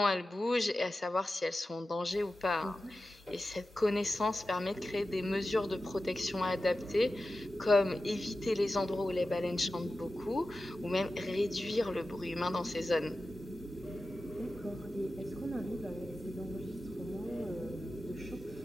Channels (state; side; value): normal; both; correlation 0.93